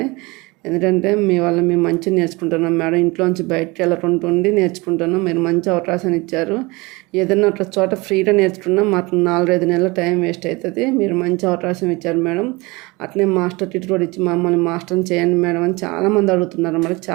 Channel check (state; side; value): quieter; left; 24.3 dB